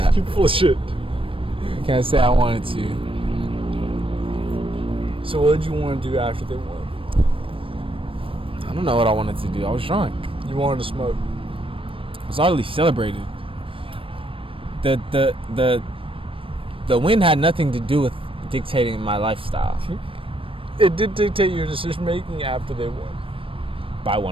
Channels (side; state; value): left; late; 0.26 ms